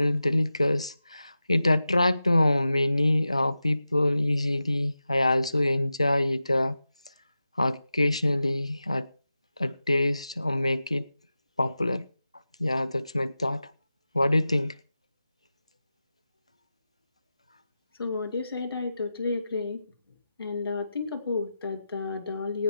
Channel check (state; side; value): inverted; both; correlation -0.93